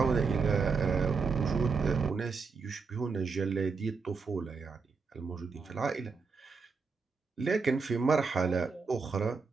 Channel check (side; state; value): left; quieter; 4.9 dB